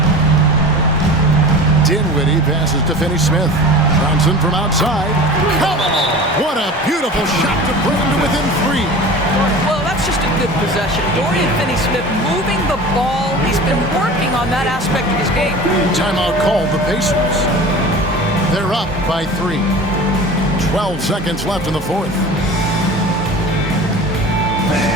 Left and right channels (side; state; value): both; normal; correlation 0.37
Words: Dinwiddie passes to Finney-Smith. Johnson from outside. Come on! What a beautiful shot to bring him to within 3. Well, that's just a good possession. Dorian Finney-Smith moving the ball. He's been working on that aspect of his game. Timeout called the Pacers. They're up by 3. 12 seconds left in the fourth.